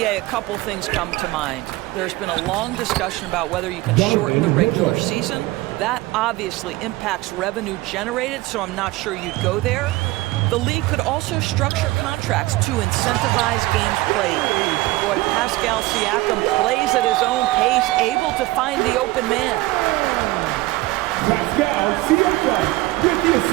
a couple things come to mind. There's been a long discussion about whether you can shorten the regular season. That obviously impacts revenue generated, so I'm not sure you'd go there. The league could also structure contracts to incentivize games played. Boy, Pascal Siakam plays at his own pace, able to find the open man.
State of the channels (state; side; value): quieter; left; 19.4 dB